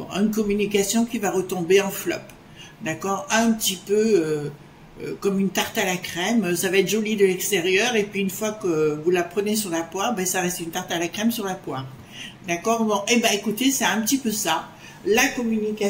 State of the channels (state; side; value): identical; both; correlation 1.00